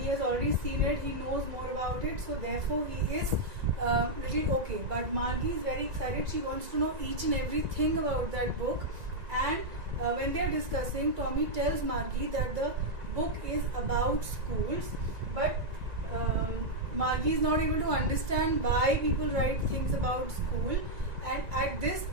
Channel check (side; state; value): left; late; 1.9 ms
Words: he has already seen it, he knows more about it, so therefore he is little okay. But Margie is very excited, she wants to know each and everything about that book, and when they are discussing, Tommy tells Margie that the book is about schools, but Margie is not able to understand why people write things about school. And at this